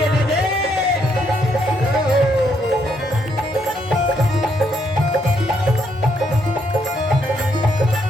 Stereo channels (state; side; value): normal; both; correlation 0.74